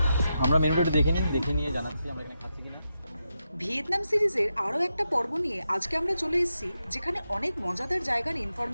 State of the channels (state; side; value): inverted; both; correlation -0.87